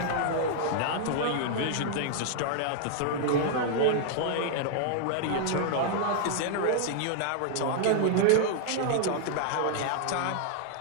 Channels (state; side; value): different; both; correlation -0.01